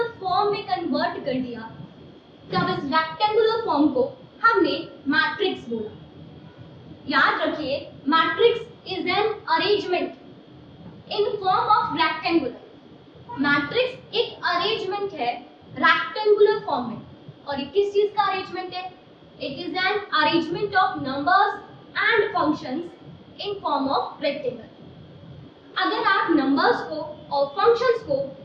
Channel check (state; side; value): identical; both; correlation 1.00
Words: फॉर्म में कन्वर्ट कर दिया, तब इस रेक्टेंगुलर फॉर्म को हमने मैट्रिक्स बोला। याद रखिए, matrix is an arrangement in form of rectangular. Matrix एक अरेंजमेंट है रेक्टेंगुलर फॉर्म में। और ये किस चीज का अरेंजमेंट है? It is an arrangement of numbers and functions in form of rectangle. अगर आप नंबर्स को और फंक्शंस को